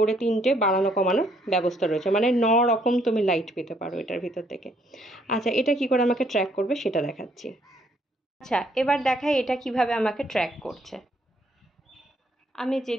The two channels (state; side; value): normal; both; correlation 0.68